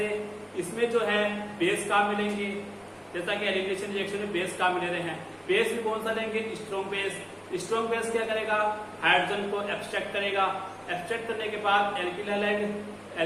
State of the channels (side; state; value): both; identical; correlation 1.00